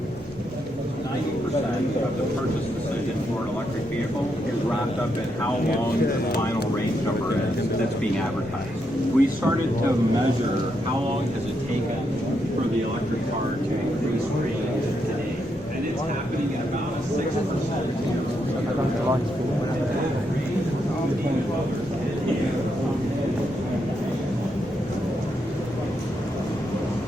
the purchase decision for an electric vehicle is wrapped up in how long the final range number is that's being advertised. We started to measure how long has it taken for the electric car to increase range today, and it's happening at about a 6%.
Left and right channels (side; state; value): both; normal; correlation 0.80